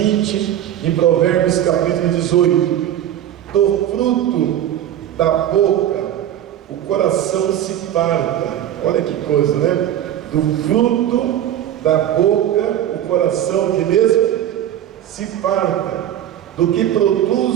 em Provérbios capítulo 18: do fruto da boca o coração se farta. Olha que coisa, né? Do fruto da boca o coração que mesmo se farta. Do que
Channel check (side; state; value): left; quieter; 11.3 dB